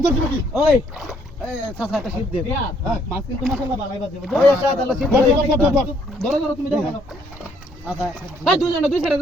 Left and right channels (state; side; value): normal; both; correlation 0.67